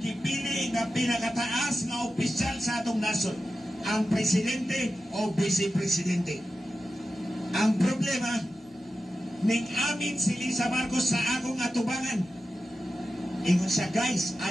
gipili nga pinakataas nga opisyal sa atong nasod, ang presidente o vice-presidente. Ang problema, ning amin si Lisa Marcos sa akong atubangan. Ingon siya, guys,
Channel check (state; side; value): normal; both; correlation 0.93